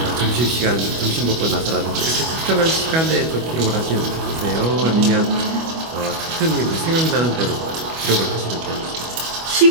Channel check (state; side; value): late; left; 25 ms